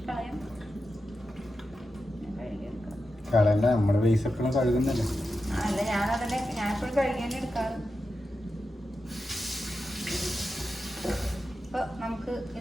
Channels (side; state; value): both; normal; correlation 0.90